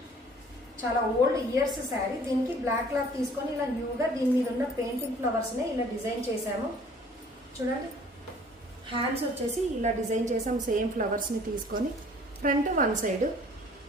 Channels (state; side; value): normal; both; correlation 0.53